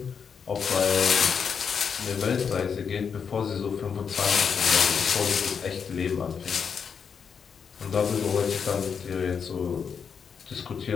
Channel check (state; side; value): quieter; right; 6.5 dB